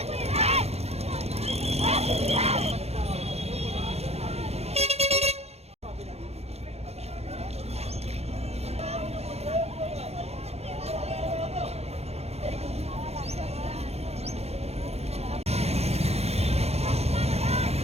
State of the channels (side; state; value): left; late; 0.31 ms